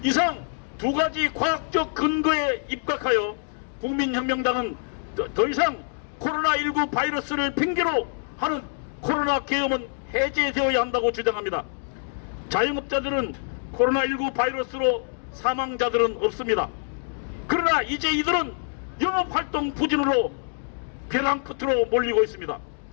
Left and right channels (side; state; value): right; silent; digital silence